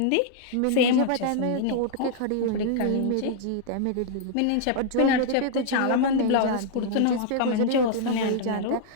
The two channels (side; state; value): both; different; correlation -0.01